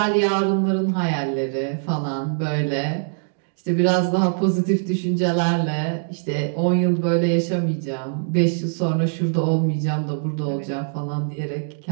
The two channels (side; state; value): left; silent; digital silence